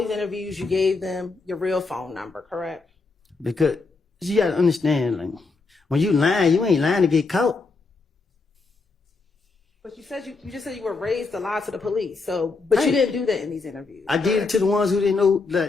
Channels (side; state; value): right; quieter; 4.0 dB